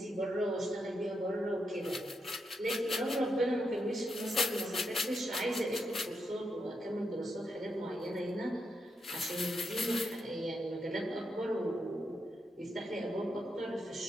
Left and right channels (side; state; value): both; normal; correlation 0.83